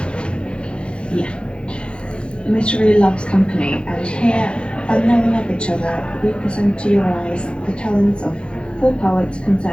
Yeah. Mystery loves company, and here, unknowing of each other, we present to your eyes the talents of 4 poets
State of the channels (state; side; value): late; right; 0.056 ms